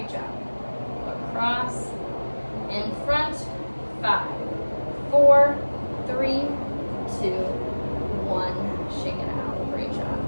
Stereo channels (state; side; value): inverted; both; correlation -1.00